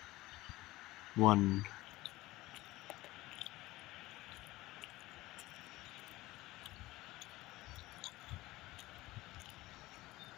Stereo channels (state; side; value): quieter; right; 18.7 dB